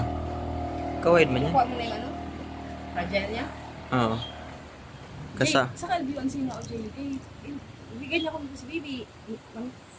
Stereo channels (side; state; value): both; identical; correlation 1.00